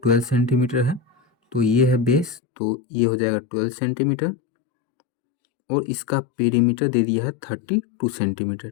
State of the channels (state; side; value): drops out; right; at 2.4 s